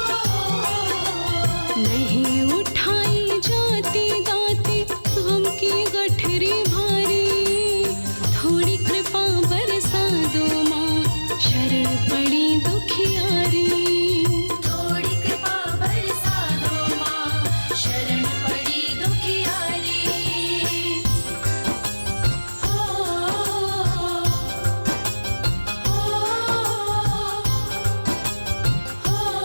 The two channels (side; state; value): both; inverted; correlation -1.00